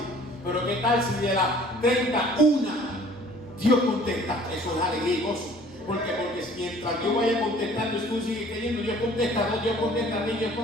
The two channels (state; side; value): normal; both; correlation 0.52